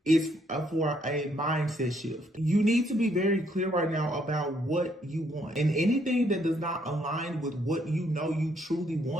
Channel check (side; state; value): both; normal; correlation 0.70